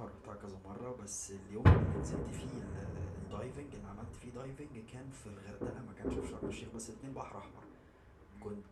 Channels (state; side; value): identical; both; correlation 1.00